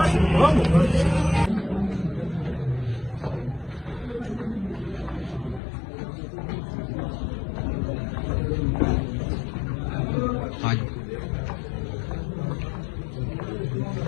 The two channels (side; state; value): right; drops out; at 5.6 s